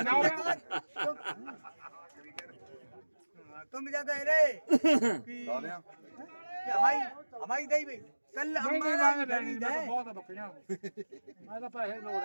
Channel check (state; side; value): inverted; both; correlation -1.00